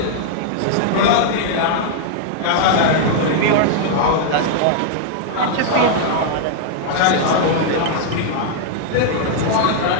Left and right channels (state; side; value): different; both; correlation -0.01